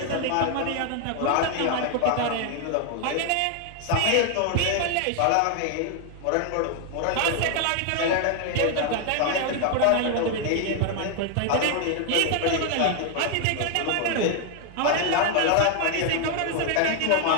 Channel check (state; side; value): different; both; correlation 0.00